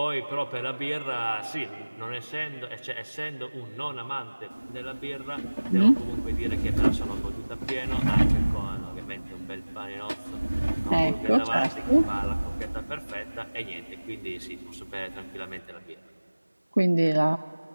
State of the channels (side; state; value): both; inverted; correlation -1.00